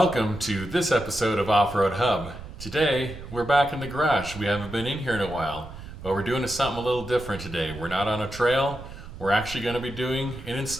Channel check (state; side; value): noise; right; rumble, 13 dB below the sound